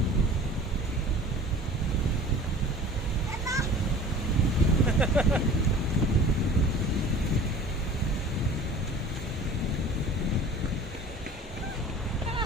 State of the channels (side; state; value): both; normal; correlation 0.43